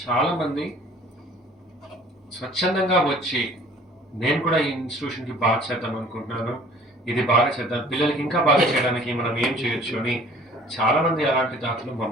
చాలామంది స్వచ్ఛందంగా వచ్చి నేను కూడా ఈ ఇన్స్టిట్యూషన్కి బాగా చేద్దాం అనుకుంటున్నాను, ఇది బాగా చేద్దాం, పిల్లలకి ఇంకా బాగా చేయడానికి మనం ఏం చేయొచ్చు అని చాలామంది అలాంటి దాతలు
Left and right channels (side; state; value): both; normal; correlation 0.51